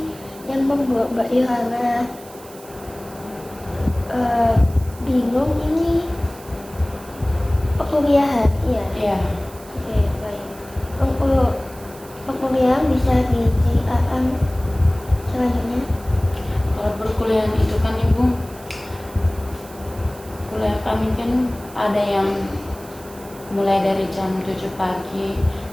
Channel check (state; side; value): noise; right; hiss, 21 dB below the sound